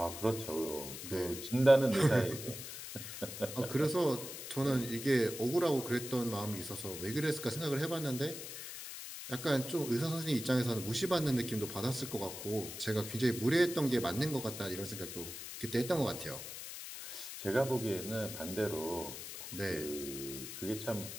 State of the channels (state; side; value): noise; left; hiss, 9 dB below the sound